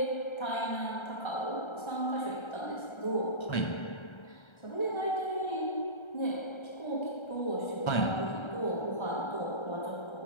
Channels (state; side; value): late; right; 1.3 ms